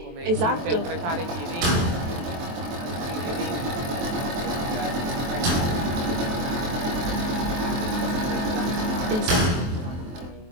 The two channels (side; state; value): left; late; 23 ms